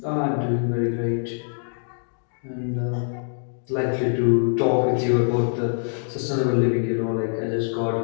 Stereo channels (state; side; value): silent; right; digital silence